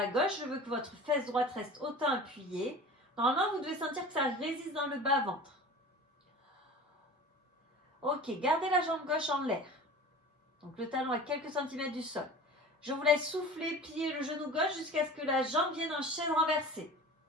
gauche. Je veux que votre fesse droite reste autant appuyée. Normalement, vous devez sentir que ça résiste dans le bas-ventre. Ok, gardez la jambe gauche en l'air. Donc le talon à quelques centimètres du sol. Je vous laisse souffler, plier le genou gauche jusqu'à ce que la jambe vienne en chaise renversée.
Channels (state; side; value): normal; both; correlation 0.38